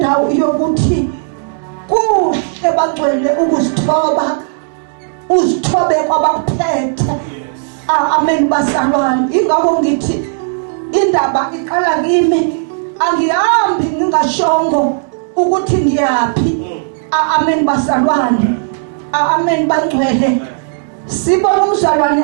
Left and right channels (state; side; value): silent; left; digital silence